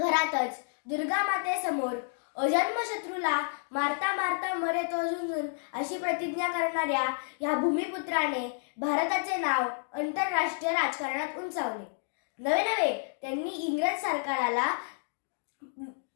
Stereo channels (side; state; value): right; silent; digital silence